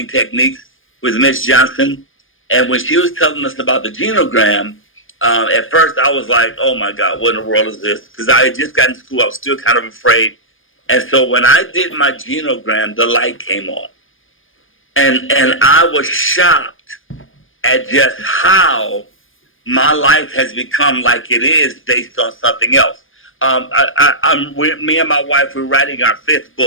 techniques with Miss Johnson, and when she was telling us about the genogram, at first I was like, "Oh my God, what in the world is this?" Because I had just gotten to school, I was still kind of afraid. And so when I did my genogram, the light came on, and I was shocked at just how my life has become like it is based on something else. Me and my wife, we're writing our fifth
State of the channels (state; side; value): late; right; 0.59 ms